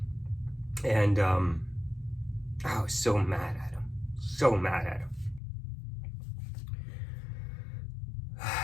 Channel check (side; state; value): right; drops out; at 5.4 s